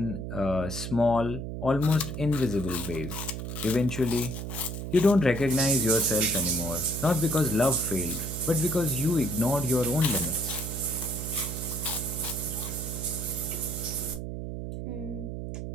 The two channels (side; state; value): right; noise; hum, 6 dB below the sound